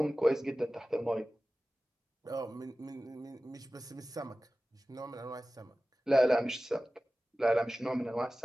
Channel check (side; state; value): both; normal; correlation 0.96